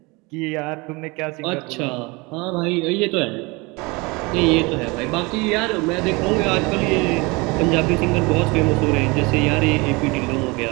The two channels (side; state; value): left; quieter; 25.9 dB